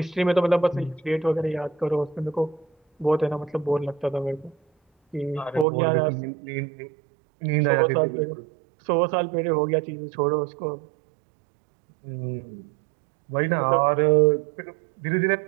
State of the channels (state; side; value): drops out; left; at 5.7 s